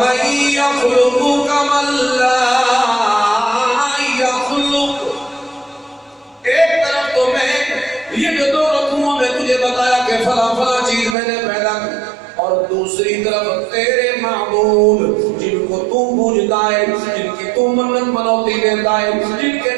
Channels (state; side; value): drops out; left; at 11.2 s